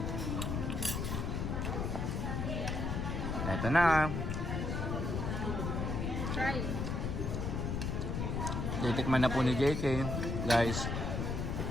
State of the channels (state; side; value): noise; left; rumble, 1 dB below the sound